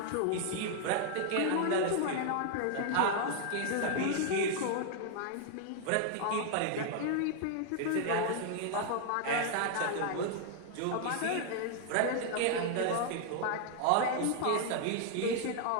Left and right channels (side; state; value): both; different; correlation 0.00